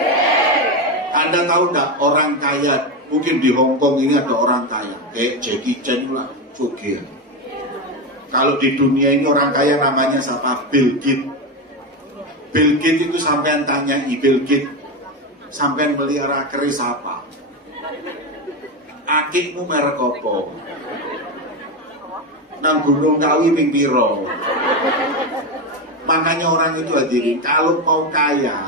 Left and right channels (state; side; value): normal; both; correlation 0.14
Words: Anda tahu nggak orang kaya? Mungkin di Hongkong ini ada orang kaya, kayak Jackie Chan lah, Jogia. Kalau di dunia ini orang kaya namanya siapa? Bill Gates. Bill Gates itu sampean tanya, Bill Gates, sampean melihara keris apa? Akikmu merek apa? Nang Gunung Kawi ping piro? Makanya orang itu hadirin, kalau mau